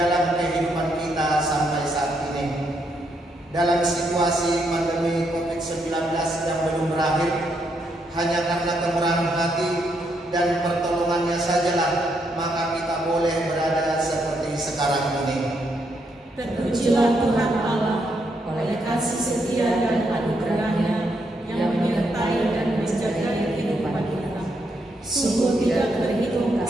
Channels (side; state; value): both; normal; correlation 0.77